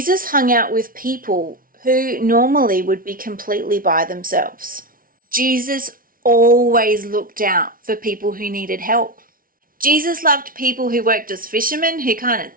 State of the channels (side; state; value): left; late; 0.42 ms